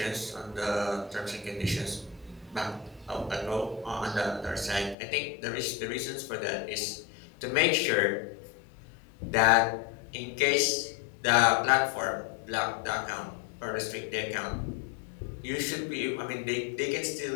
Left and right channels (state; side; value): drops out; right; at 5.0 s